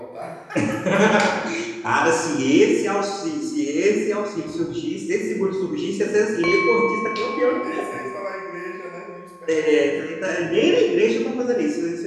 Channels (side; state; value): both; identical; correlation 1.00